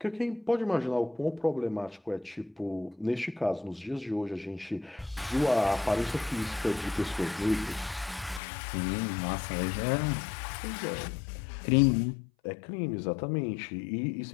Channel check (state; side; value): drops out; right; at 8.4 s